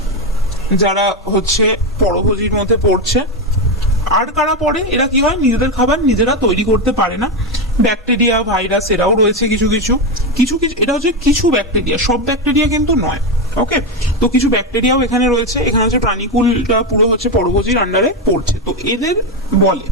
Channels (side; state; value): both; normal; correlation 0.10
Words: যারা হচ্ছে পরভোজীর মধ্যে পড়ছে। আর কারা পড়ে? এরা কি হয়, নিজেদের খাবার নিজেরা তৈরি করতে পারে না। ব্যাকটেরিয়া, ভাইরাস এরাও রয়েছে কিছু কিছু কিছু কিছু এটা হচ্ছে কিছু ব্যাকটেরিয়া, সব ব্যাকটেরিয়া কিন্তু নয়। ওকে, তো কিছু ব্যাকটেরিয়াও এখানে রয়েছে। এখানে হচ্ছে প্রাণীকুলটা পুরো হচ্ছে পরভোজীর আন্ডারে পড়ছে, তো এদের বলে।